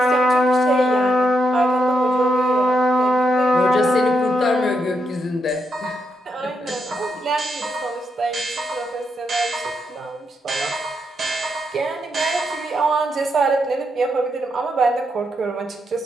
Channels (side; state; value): both; normal; correlation 0.81